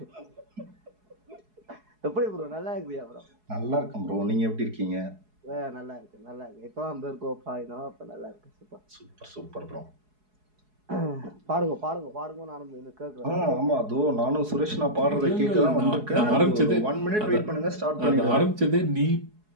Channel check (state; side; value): late; left; 4.7 ms